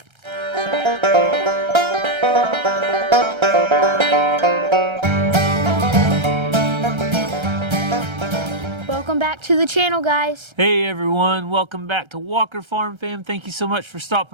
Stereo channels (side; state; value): left; late; 1.3 ms